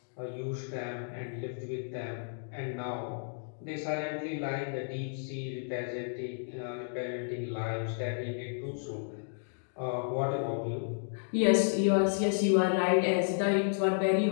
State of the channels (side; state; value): right; silent; digital silence